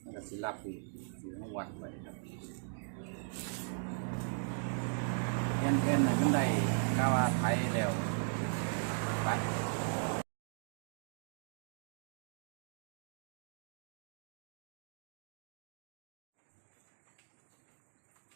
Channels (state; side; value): silent; left; digital silence